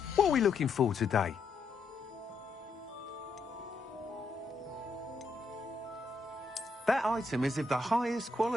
What are we looking for today? That item is of the highest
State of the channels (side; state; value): right; quieter; 3.6 dB